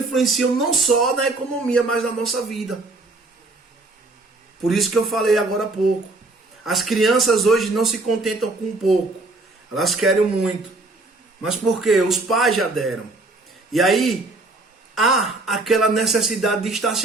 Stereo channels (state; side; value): quieter; left; 3.1 dB